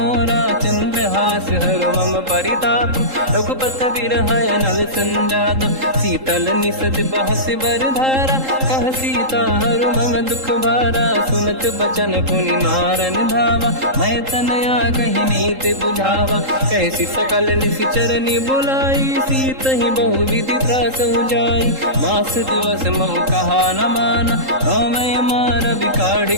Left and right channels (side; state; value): left; late; 3.8 ms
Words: चंद्रहास हर मम परिताप रघुपत बिरहय नल संजात। शीतल निसत बहस बरधारा कह सीता हर मम दुख भारा। सुनत बचन पुनि मारन धावा मैं तनया कही नीति बुझावा। कैसी सकल निश्चरनि बुलाई सीत ही बहु विधि त्रास जाई। मास दिवस मम कहा न माना नौ मैं मार बिकाढ़